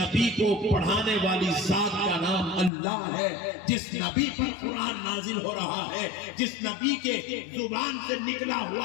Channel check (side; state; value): right; drops out; at 2.7 s